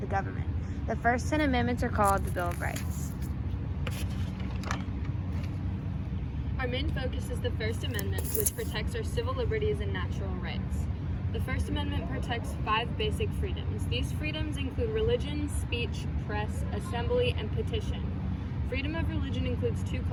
the government. The first 10 amendments are called the Bill of Rights. Our main focus is the First Amendment, which protects our civil liberties and natural rights. The First Amendment protects 5 basic freedoms. These freedoms include religion, speech, press, assembly, and petition. Freedom of religion includes 2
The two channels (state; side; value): identical; both; correlation 1.00